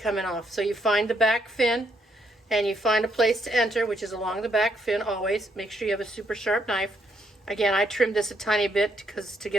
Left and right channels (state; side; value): normal; both; correlation 0.74